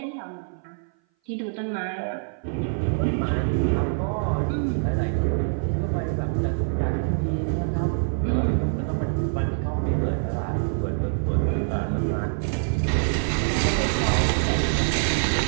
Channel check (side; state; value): left; silent; 58 dB below the other